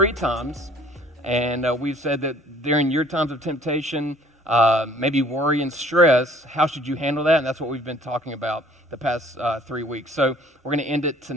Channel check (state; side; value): normal; both; correlation 0.55